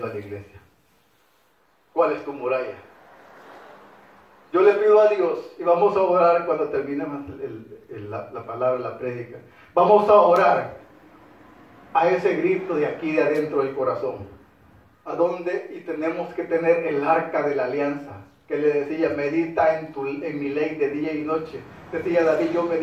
a la iglesia. ¿Cuál es tu muralla? Yo le pido a Dios, y vamos a orar cuando terminemos la palabra, la prédica. Vamos a orar a ese grito de aquí, de adentro del corazón. ¿A dónde? Y tenemos que tener el arca de la alianza, que le decía: medita en mi ley de día y noche. Decía David: yo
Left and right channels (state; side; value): identical; both; correlation 1.00